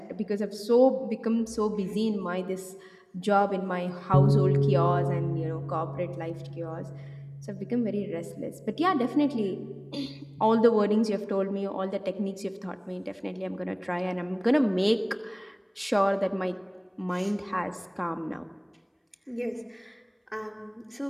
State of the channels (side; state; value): both; identical; correlation 1.00